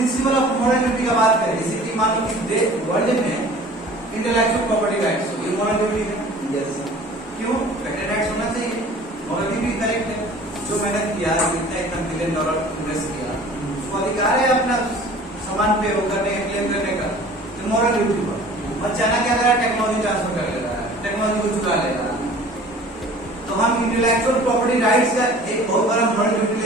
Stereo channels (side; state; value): both; normal; correlation 0.46